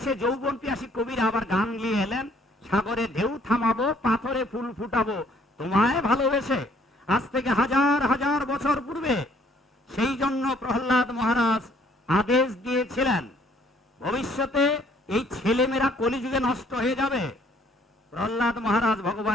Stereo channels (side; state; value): both; normal; correlation 0.62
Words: যৌবন পিয়াসী কবিরা আবার গান নিয়ে এলেন, সাগরে ঢেউ থামাবো, পাথরে ফুল ফুটাবো তোমায় ভালোবেসে। আজ থেকে হাজার হাজার বছর পূর্বে। সেই জন্য প্রহ্লাদ মহারাজ আদেশ দিয়েছিলেন, ভবিষ্যতে এই ছেলেমেয়েরা কলিযুগে নষ্ট হয়ে যাবে। প্রহ্লাদ মহারাজ